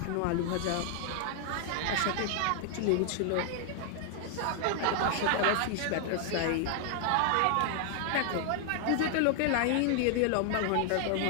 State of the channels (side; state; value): both; different; correlation 0.00